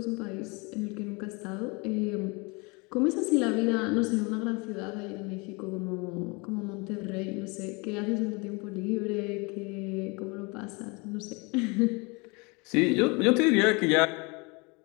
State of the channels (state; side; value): quieter; right; 28.6 dB